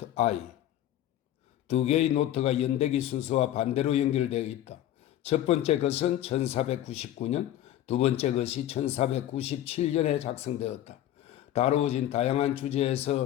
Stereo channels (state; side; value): quieter; right; 12.6 dB